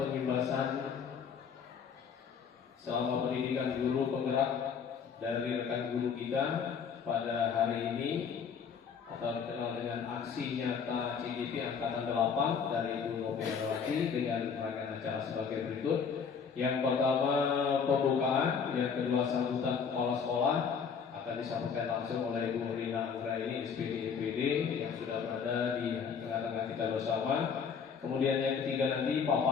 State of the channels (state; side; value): quieter; right; 6.4 dB